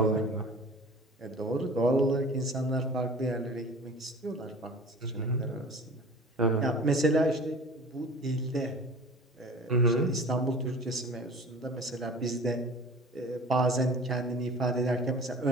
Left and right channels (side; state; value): both; normal; correlation 0.42